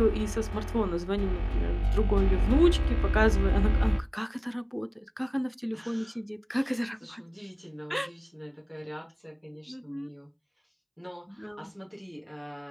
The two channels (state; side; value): identical; both; correlation 1.00